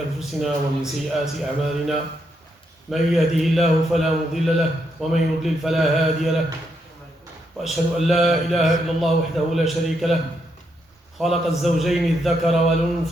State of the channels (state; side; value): normal; both; correlation 0.79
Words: أنفسنا ومن سيئات أعمالنا من يهده الله فلا مضل له ومن يضلل فلا هادي له وأشهد أن لا إله إلا الله وحده لا شريك له خلق الزوجين الذكر